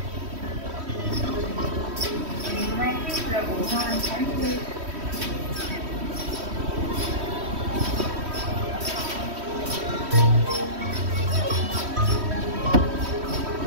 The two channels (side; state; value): left; late; 3.1 ms